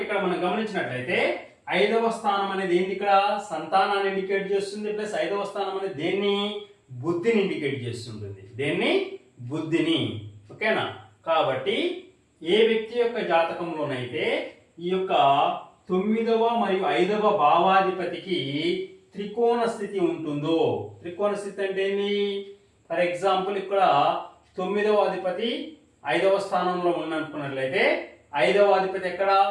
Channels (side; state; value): both; identical; correlation 1.00